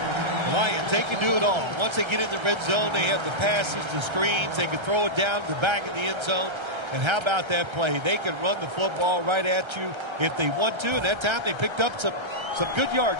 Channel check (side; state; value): left; late; 1.3 ms